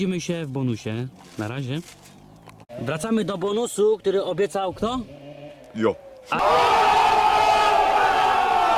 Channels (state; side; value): identical; both; correlation 1.00